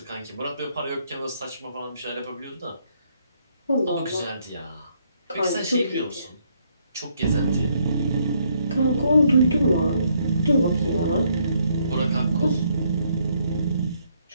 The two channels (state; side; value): inverted; both; correlation -0.72